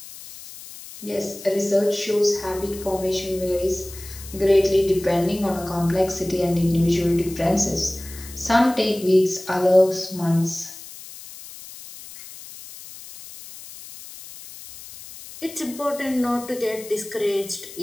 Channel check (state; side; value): noise; left; hiss, 15 dB below the sound